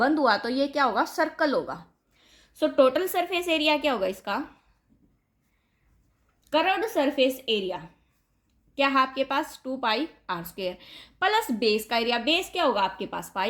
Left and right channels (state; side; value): identical; both; correlation 1.00